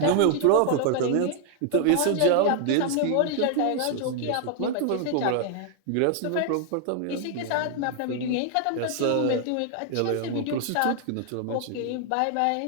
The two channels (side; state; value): both; different; correlation 0.00